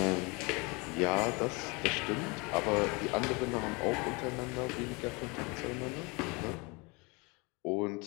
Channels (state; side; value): quieter; right; 28.1 dB